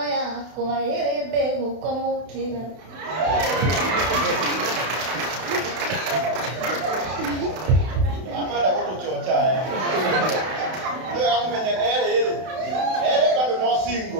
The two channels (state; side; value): late; left; 32 ms